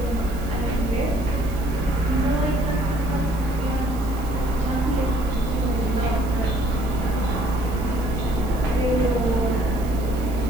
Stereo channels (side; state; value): right; noise; hiss, 19 dB below the sound